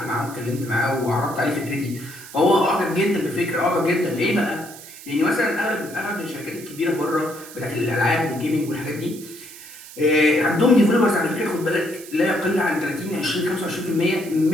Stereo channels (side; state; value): right; noise; hiss, 16 dB below the sound